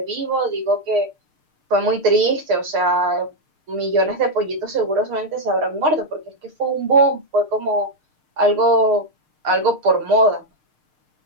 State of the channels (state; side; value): late; left; 6.6 ms